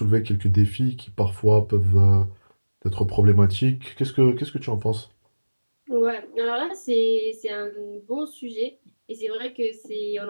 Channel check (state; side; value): inverted; both; correlation -1.00